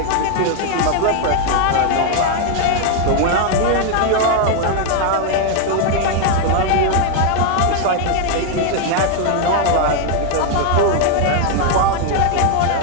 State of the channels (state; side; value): different; both; correlation 0.00